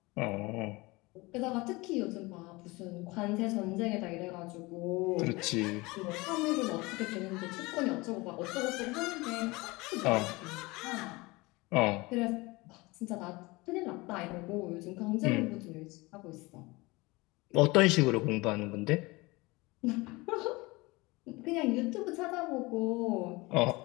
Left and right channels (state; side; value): quieter; right; 23.2 dB